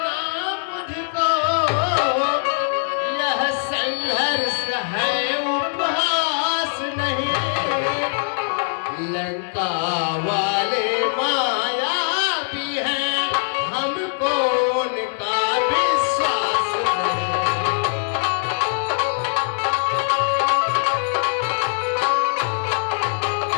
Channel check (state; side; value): silent; right; digital silence